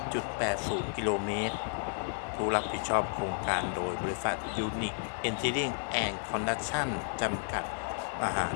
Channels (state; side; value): silent; right; 56 dB below the other